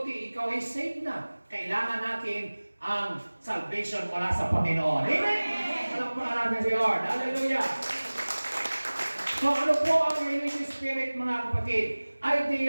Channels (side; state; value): both; inverted; correlation -1.00